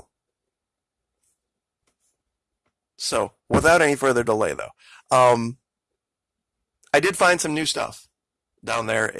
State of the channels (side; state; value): both; identical; correlation 1.00